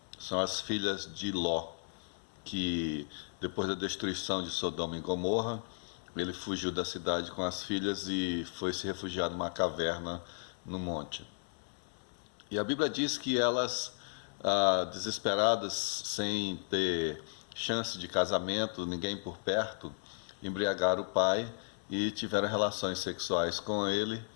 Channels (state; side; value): silent; right; digital silence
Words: São as filhas de Ló, que depois da destruição de Sodoma e Gomorra, ele fugiu da cidade com as filhas e foi se refugiar numa caverna no monte. E a Bíblia diz que elas, desesperadas, sem ter chance de casamento, ninguém por perto, embriagaram o pai e tiveram relações sexuais com ele